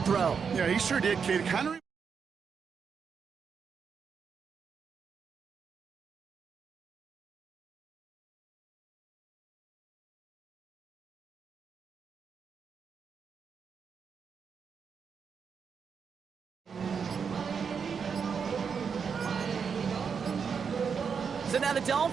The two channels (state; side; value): quieter; left; 6.3 dB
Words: throw. Yeah, he sure did, Kate. Kind of. So now the